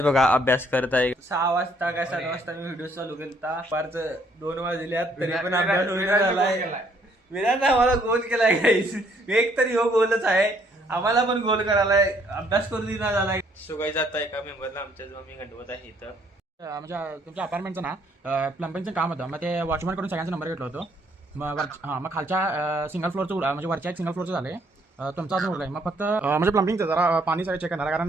बघा अभ्यास करत आहे. 6 वाजता काय 7 वाजता मी व्हिडिओ चालू केला. पारच 2 वाजल्यात तरी पण अभ्यास होईना झालाय. विराज आम्हाला गोल केलाय गाईस. एक तरी हो गोलच आहे, आम्हाला पण गोल करायलाय, अभ्यास करू दिना झालाय. सुगाई जात आहे एका मेंबरला आमच्या जो मी गणवत आहे इथं. म्हणजे तुमच्या अपार्टमेंटचं ना प्लंबिंगचं काम होतं. मग ते वॉचमॅन कडून सगळ्यांचा नंबर घेतला होतो. मग खालच्या सिंगल फ्लोअरचं म्हणजे वरच्या एक सिंगल फ्लोअरचं झाले. तुमचा अजून उरलाय. मग फक्त म्हणजे प्लंबिंगचं जरा पाणी सगळं चेक करणार,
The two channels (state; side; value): normal; both; correlation 0.66